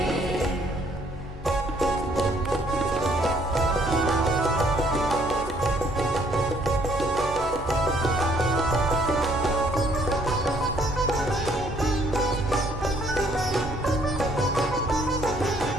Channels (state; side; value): normal; both; correlation 0.64